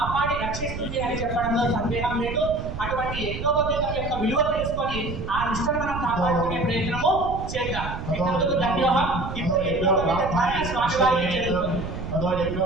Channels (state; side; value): noise; right; rumble, 7 dB below the sound